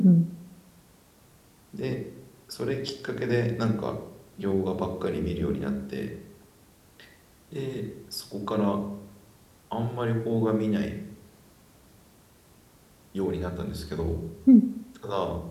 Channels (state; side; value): identical; both; correlation 1.00